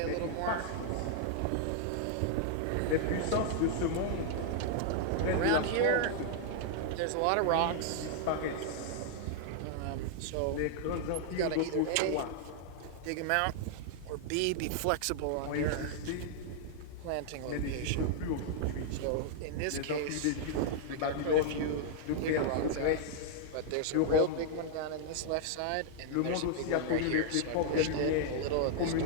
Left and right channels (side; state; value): both; different; correlation -0.01